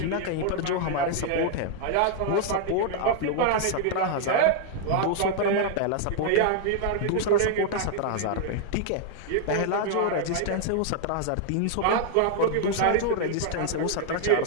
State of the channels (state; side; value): different; both; correlation 0.00